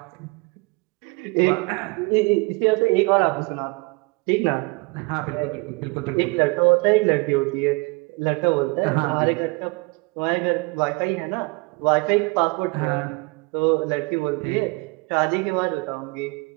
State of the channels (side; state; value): left; quieter; 27.4 dB